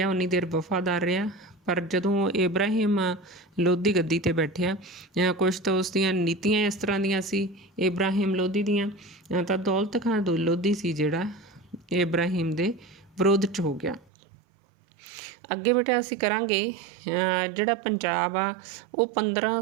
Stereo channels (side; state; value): left; drops out; at 14.1 s